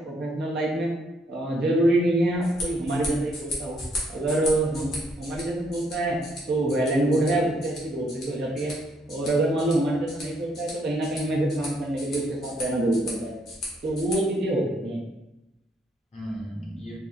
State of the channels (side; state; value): both; normal; correlation 0.70